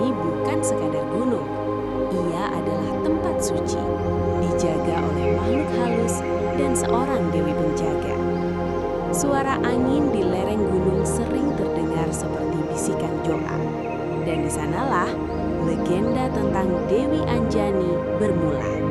bukan sekadar gunung. Ia adalah tempat suci, dijaga oleh makhluk halus dan seorang dewi penjaga. Suara angin di lereng gunung sering terdengar seperti bisikan doa. Dan di sanalah legenda tentang Dewi Anjani bermula.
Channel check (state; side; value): identical; both; correlation 1.00